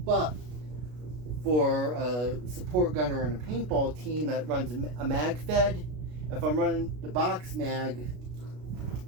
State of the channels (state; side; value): late; left; 33 ms